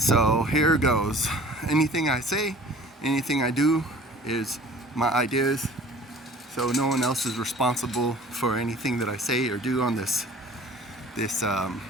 here goes. Anything I say, anything I do is my ideas. So no one else is responsible for anything that I say or do on this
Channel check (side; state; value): both; normal; correlation 0.47